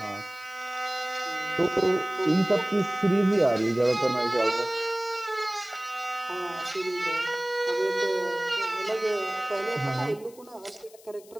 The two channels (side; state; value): left; noise; hiss, 24 dB below the sound